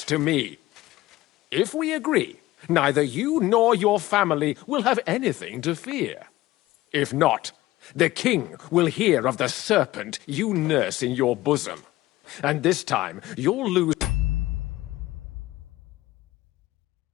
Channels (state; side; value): quieter; right; 17.1 dB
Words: to me. If we agree, neither you nor your family will have anything to fear. If not, the king will hear of the serpent you nurse in your bosom. And this time, you'll lose